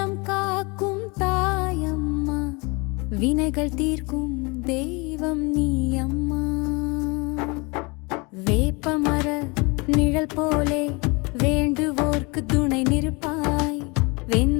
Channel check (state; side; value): quieter; right; 28.3 dB